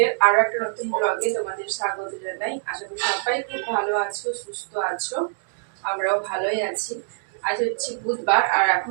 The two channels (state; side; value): silent; left; digital silence